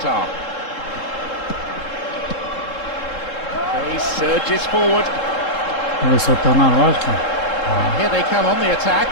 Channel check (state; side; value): late; right; 3.7 ms